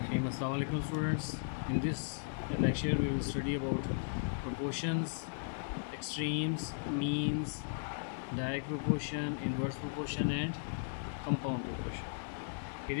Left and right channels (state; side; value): silent; right; digital silence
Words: Assalamu alaikum students. In this lecture we will study about proportions, extremes, means, direct proportion, inverse proportion and compound proportion. It